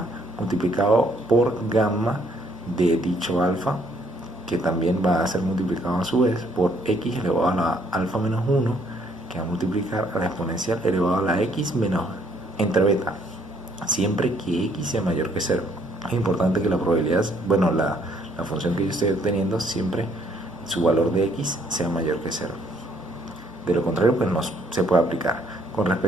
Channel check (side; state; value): both; normal; correlation 0.66